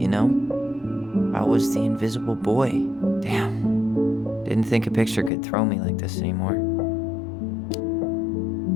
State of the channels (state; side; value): drops out; right; at 5.3 s